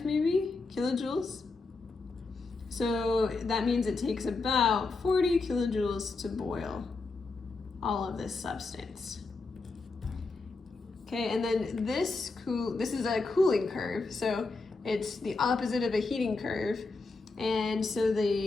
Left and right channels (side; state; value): right; quieter; 3.8 dB